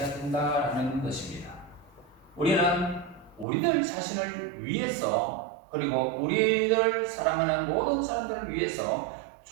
된다는 것입니다. 우리는 우리들 자신을 위해서 그리고 우리를 사랑하는 모든 사람들을 위해서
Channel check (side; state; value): left; drops out; at 3.5 s